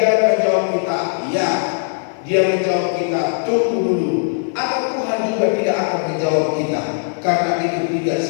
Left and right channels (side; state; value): right; silent; 60 dB below the other